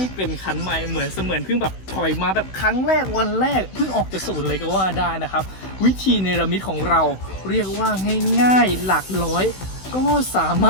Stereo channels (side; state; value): right; late; 16 ms